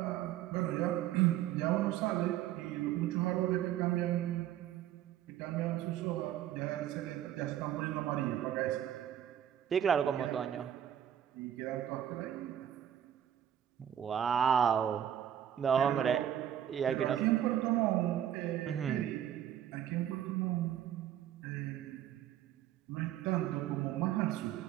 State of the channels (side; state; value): left; quieter; 10.8 dB